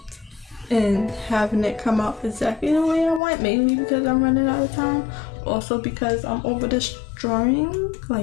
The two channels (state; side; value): drops out; right; at 3.2 s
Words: and having it come out exactly the way I want, mainly because I'm running out of time, also because I'm over this drawing.